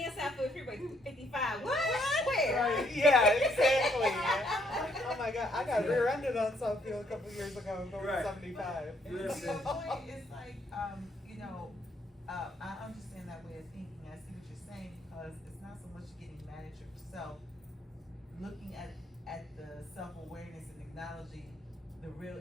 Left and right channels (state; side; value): normal; both; correlation 0.70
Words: South Philly Freeway 55. What? Where? Right. Yeah, I got rear-ended on Southfield a couple of years ago going Right. 75. Listen. The point is like, you know, I understand that way of thinking. I see what you're saying because it's not so much getting mad at yourself, looking at the self-awareness and acknowledging the real